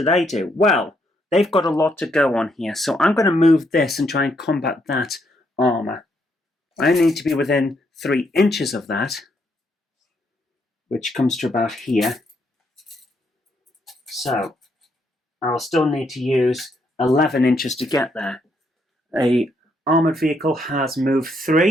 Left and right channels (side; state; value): both; normal; correlation 0.75